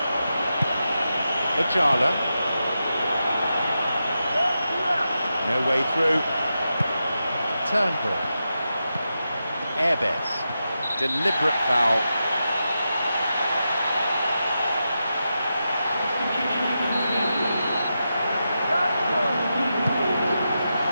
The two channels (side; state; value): both; inverted; correlation -0.89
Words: Ojala. No way through. Turnbull. Erbes. Deliberate foul.